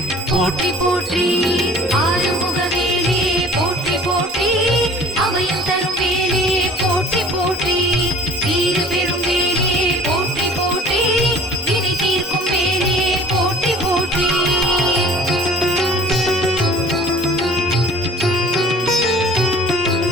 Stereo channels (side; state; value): both; normal; correlation 0.48